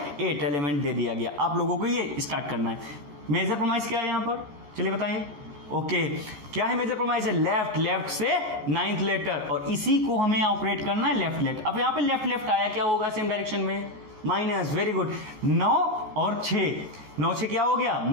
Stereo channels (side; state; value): left; late; 14 ms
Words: 8 एलिमेंट दे दिया गया। आप लोगों को ये स्टार्ट करना है। मेजर प्रोमाइज क्या है यहां पर, चलिए बताइए। ओके, क्या है मेजर प्रोमाइज है, लेफ्ट से 9th लेटर, और इसी को हमें ऑपरेट करना है लेफ्ट। अब यहां पे लेफ्ट आया, क्या होगा सेम डायरेक्शन में, माइनस। वेरी गुड, 9 और 6, 9 से क्या हो गया,